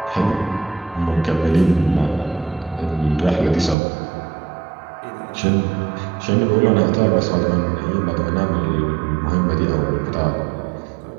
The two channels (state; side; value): drops out; left; at 3.8 s